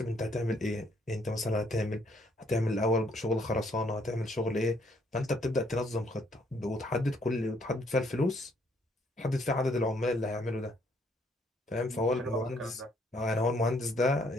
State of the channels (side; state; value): both; normal; correlation 0.68